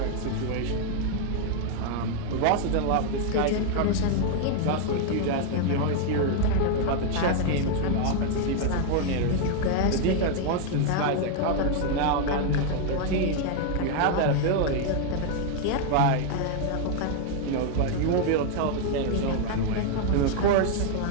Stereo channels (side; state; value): both; different; correlation 0.00